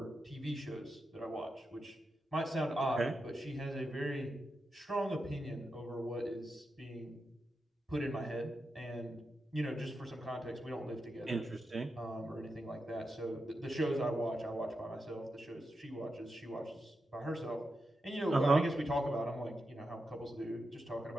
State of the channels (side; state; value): both; normal; correlation 0.88